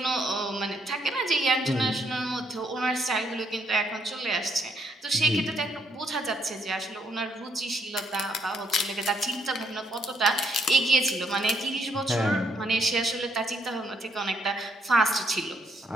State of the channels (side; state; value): both; normal; correlation 0.72